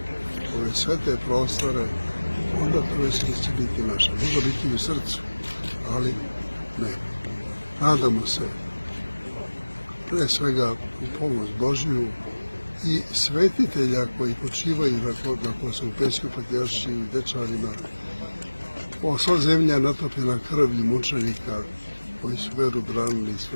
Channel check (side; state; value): both; inverted; correlation -1.00